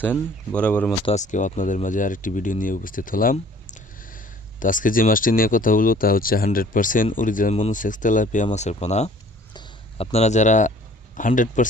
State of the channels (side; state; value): both; normal; correlation 0.53